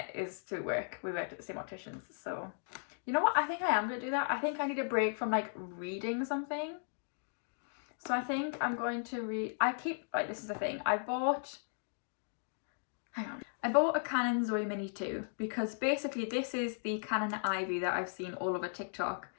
is through work. We worked at the same opticians. So you know what, I think I am going to do that. I think I need a break from like reading something. So I think I'm going to read, this is the thing, I bought a Canon Zoe Mini 2 because basically this is the Canon Ivy that I've seen all over TikTok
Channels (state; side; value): silent; right; digital silence